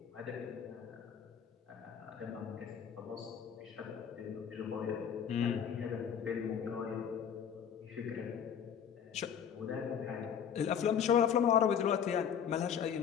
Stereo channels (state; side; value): quieter; right; 8.1 dB